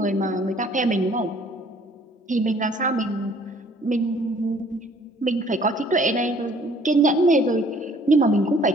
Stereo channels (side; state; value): both; normal; correlation 0.57